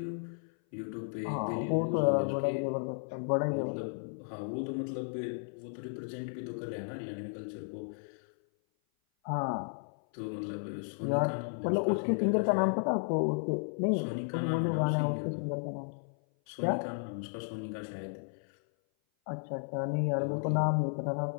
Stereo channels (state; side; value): silent; right; 55 dB below the other